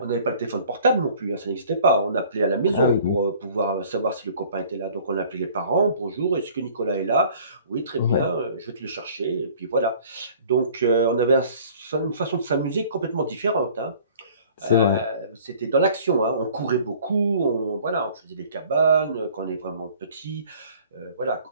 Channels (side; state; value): both; inverted; correlation -0.51